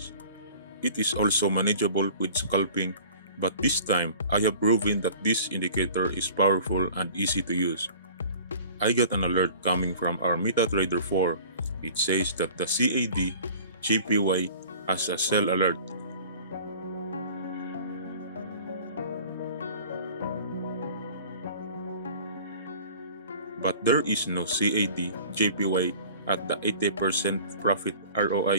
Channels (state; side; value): inverted; both; correlation -0.45